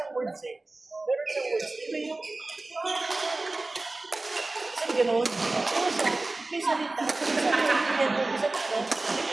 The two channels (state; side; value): quieter; left; 3.1 dB